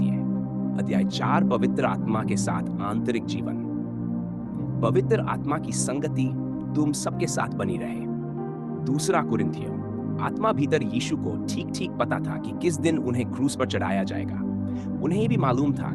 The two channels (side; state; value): both; identical; correlation 1.00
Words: अध्याय 4, पवित्र आत्मा के साथ आंतरिक जीवन। पवित्र आत्मा की संगति तुम सबके साथ बनी रहे। 2 कुरिन्थियों। आत्मा भीतर यीशु को ठीक ठीक पता था कि किस दिन उन्हें क्रूस पर चढ़ाया जाएगा। उन्हें भी मालूम था